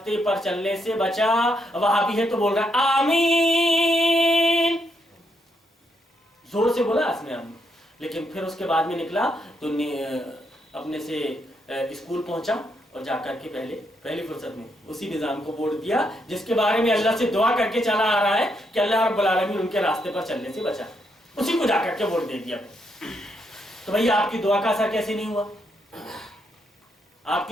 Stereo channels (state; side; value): normal; both; correlation 0.78